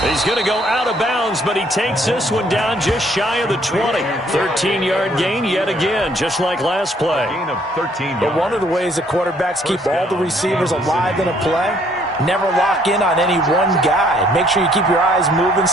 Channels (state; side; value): normal; both; correlation 0.64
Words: He's going to go out of bounds, but he takes this one down just shy of the 20. 13-yard gain yet again, just like last play. Gain of 13 But yards. one of the ways that quarterbacks keep all the receivers alive in a play, never lock in on any one guy. Make sure you keep your eyes moving,